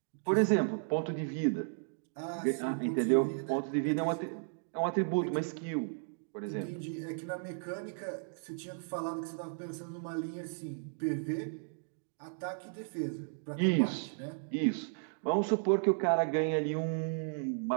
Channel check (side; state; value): left; silent; digital silence